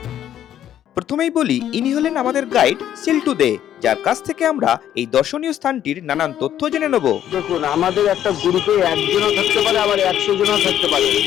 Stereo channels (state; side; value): quieter; right; 10.9 dB